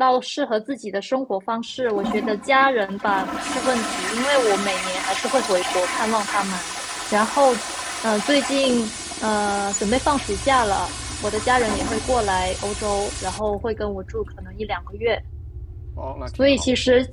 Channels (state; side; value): identical; both; correlation 1.00